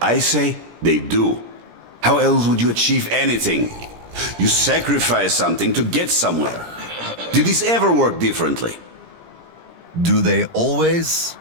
I say they do. How else would you achieve anything? You sacrifice something to get somewhere. Did this ever work differently? Do they always?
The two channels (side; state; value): left; late; 17 ms